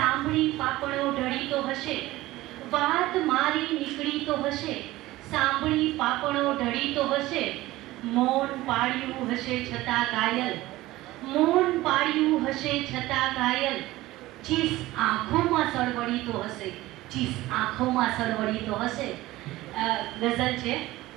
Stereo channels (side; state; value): left; quieter; 17.6 dB